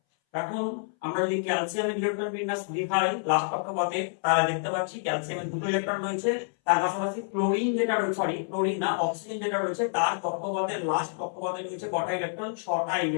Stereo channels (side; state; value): right; silent; 59 dB below the other